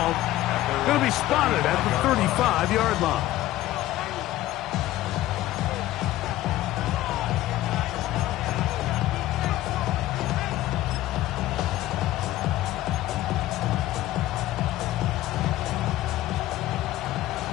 going to be spotted at the 35-yard line.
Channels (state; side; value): quieter; right; 15.2 dB